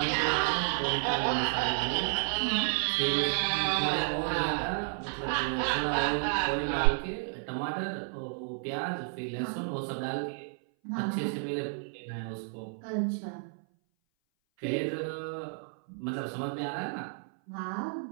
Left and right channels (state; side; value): silent; left; 57 dB below the other